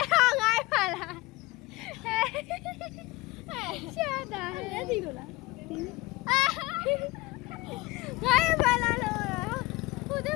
ဟာငါ့ဖန်လားဟဲ့ရှာတာဟဲ့ဒီလိုလားဒီအာငါ့ဖန်လားလို့ဟိုတဲ့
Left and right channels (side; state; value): right; quieter; 21.4 dB